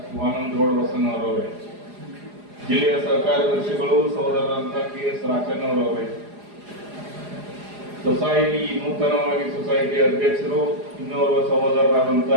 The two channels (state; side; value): late; left; 4.9 ms